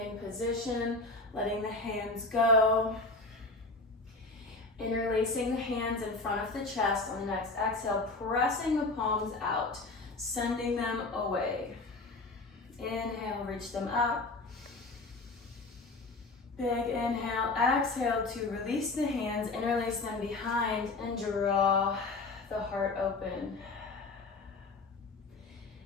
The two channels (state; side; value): quieter; right; 3.4 dB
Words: position, letting the hands go. Interlacing the hands in front of the chest on the next exhale, pressing the palms out, sending them away. Inhale, reach them up. Big inhale, exhale to release the hands, interlace them behind, and draw the heart open.